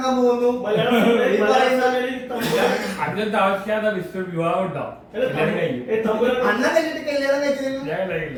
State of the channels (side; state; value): both; identical; correlation 1.00